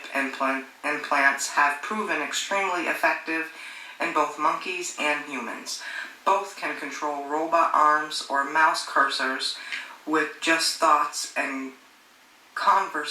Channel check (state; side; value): identical; both; correlation 1.00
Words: implants have proven extremely effective in both monkeys and humans. Both can control robot arms or mouse cursors with just thoughts, and